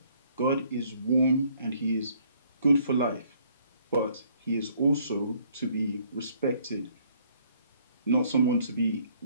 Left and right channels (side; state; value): both; inverted; correlation -0.64